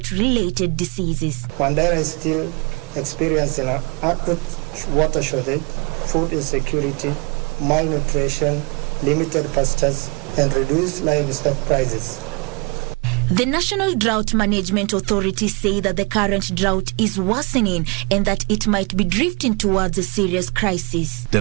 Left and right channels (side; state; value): left; quieter; 29.6 dB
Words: diseases. Mandera is still experiencing an acute water shortage, food insecurity, malnutrition, limited pastures, and reduce livestock prices. The National Drought Management Authority say that the current drought is worsening and that it might be drifting towards a serious crisis. The